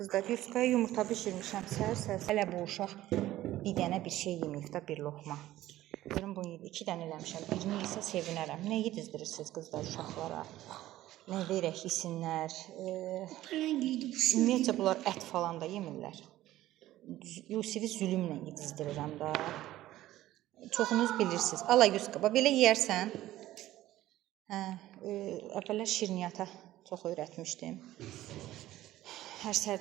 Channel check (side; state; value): left; quieter; 14.9 dB